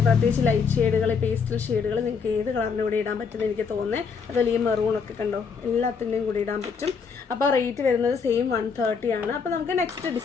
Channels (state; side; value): quieter; right; 5.7 dB